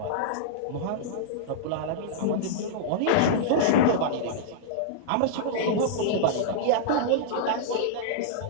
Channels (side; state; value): both; different; correlation -0.03